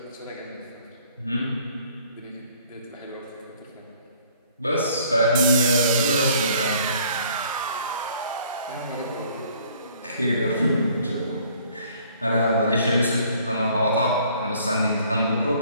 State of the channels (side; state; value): both; inverted; correlation -0.58